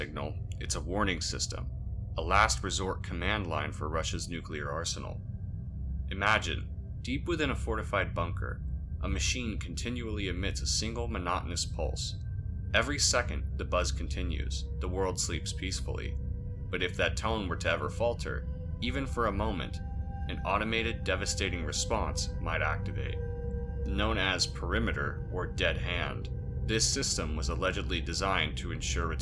it's a warning system, a last resort command line for Russia's nuclear arsenal. Imagine, deep within a fortified bunker, a machine continually emits a single monotonous pulse. Every second, the buzz continues, the world sleeps peacefully. But if that tone were to ever falter, even for a moment, an automated, devastating response might activate. Known as perimeter or dead hand, this system was allegedly designed to ensure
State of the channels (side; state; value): both; identical; correlation 1.00